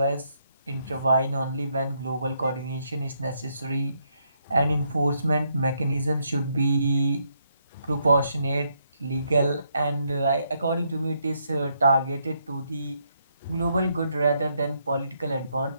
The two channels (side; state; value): both; inverted; correlation -0.76